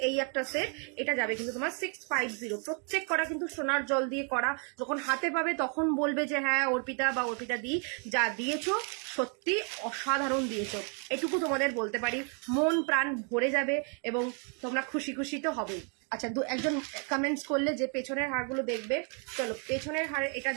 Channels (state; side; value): quieter; left; 39.3 dB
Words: এই একটা সেট, এটা যাবে কিন্তু তোমার 650। প্রত্যেক করা কিন্তু সোনার জল দিয়ে করা, যখন হাতে পাবে তখন বলবে যে হ্যাঁ অর্পিতা বা অর্পিতা দি যা দিয়েছো সত্যি অসাধারণ দিয়েছো, এটুকু তোমাদের বলতে পারি, মন প্রাণ ভরে যাবে এবং তোমরা খুশি খুশি তো হবেই। আচ্ছা একজন কমেন্টস করলে যে পেছনের হারগুলো দেখবে, চলো পেছনের হার এটা